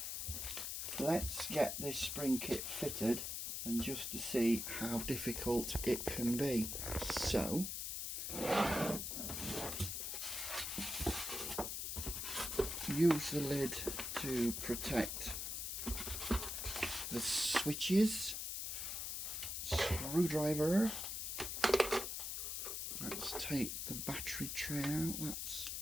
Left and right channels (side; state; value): left; noise; hiss, 3 dB below the sound